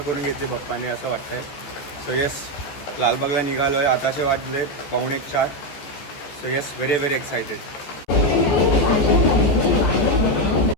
घेतली बाप्पाने असं वाटतंय. सो येस, लालबागला निघालो आहे. आताचे वाजले 3:45. So yes, very very excited.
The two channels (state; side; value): late; right; 14 ms